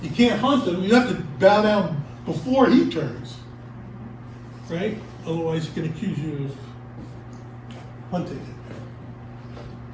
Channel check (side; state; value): both; identical; correlation 1.00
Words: can't hunt him. You have to bow down before he turns. Right? Otherwise, he can accuse you of hunting him.